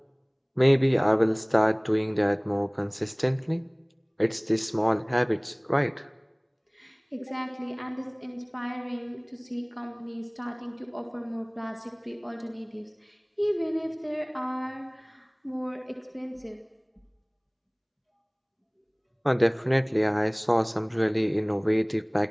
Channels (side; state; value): both; identical; correlation 1.00